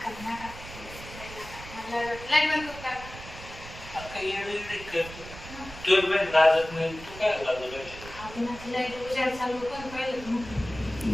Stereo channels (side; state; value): right; noise; rumble, 14 dB below the sound